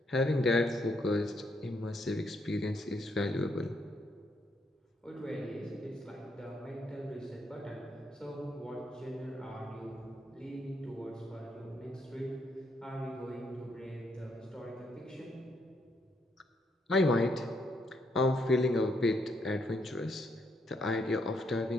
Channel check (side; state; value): both; normal; correlation 0.76